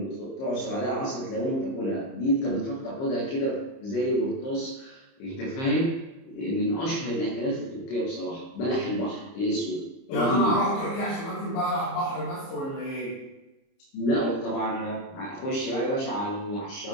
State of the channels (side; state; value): right; late; 30 ms